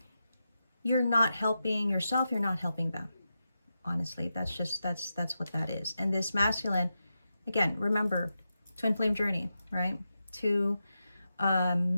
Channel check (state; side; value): inverted; both; correlation -0.89